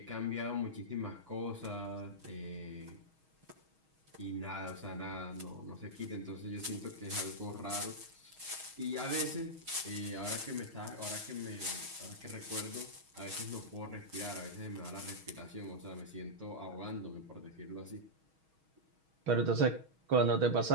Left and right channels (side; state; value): left; late; 6.3 ms